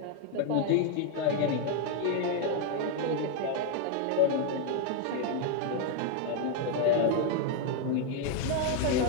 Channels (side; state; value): both; different; correlation 0.00